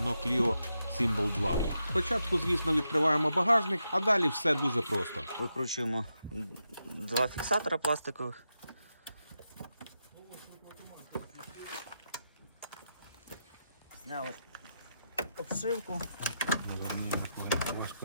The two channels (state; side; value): inverted; both; correlation -0.86